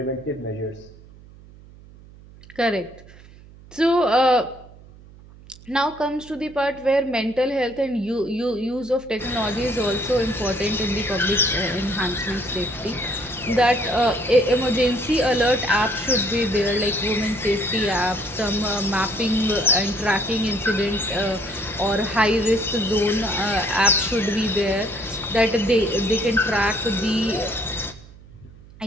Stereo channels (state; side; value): noise; right; hum, 21 dB below the sound